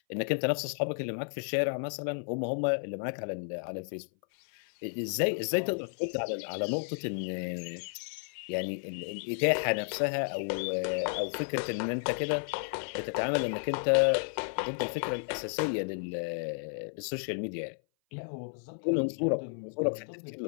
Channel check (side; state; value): right; silent; 56 dB below the other